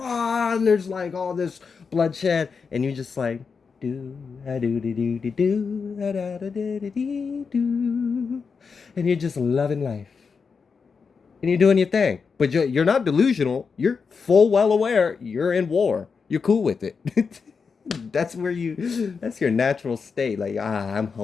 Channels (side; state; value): right; quieter; 5.4 dB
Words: and there's like all this bloodshed, and you just like do a do do do do do da da da da do, and you're just loving life, and you're doing your thing. But you're not delusional. You're full well aware you're in war. You're cool with it. That's where that's your natural state. Like, I'm